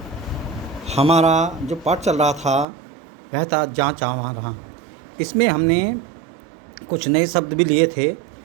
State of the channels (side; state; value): left; drops out; at 2.7 s